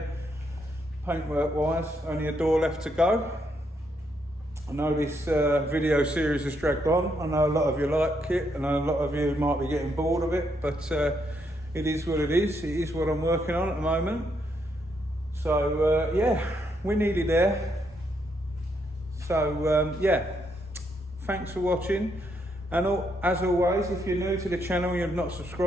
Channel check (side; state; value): both; normal; correlation 0.76